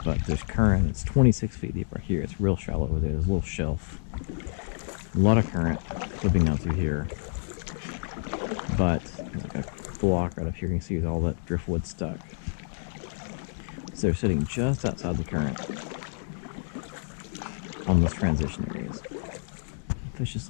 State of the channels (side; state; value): right; silent; 59 dB below the other